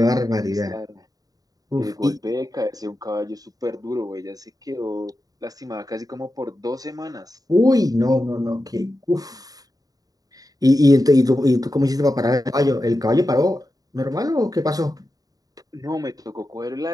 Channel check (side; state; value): left; late; 0.18 ms